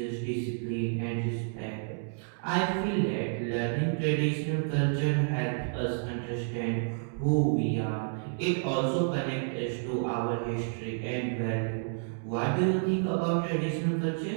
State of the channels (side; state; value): left; silent; digital silence